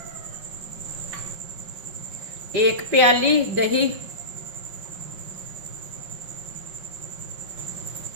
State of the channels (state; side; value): late; left; 5.5 ms